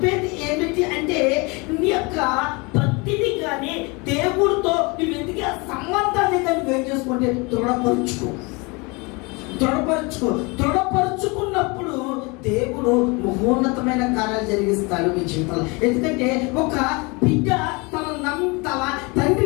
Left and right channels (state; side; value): quieter; right; 27.9 dB